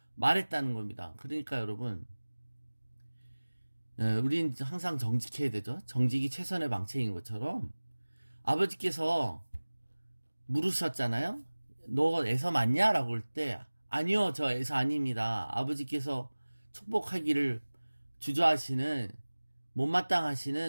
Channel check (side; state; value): both; inverted; correlation -1.00